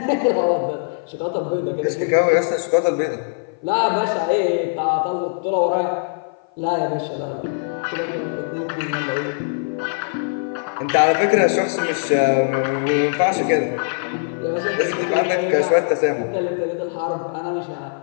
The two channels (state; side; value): silent; right; 55 dB below the other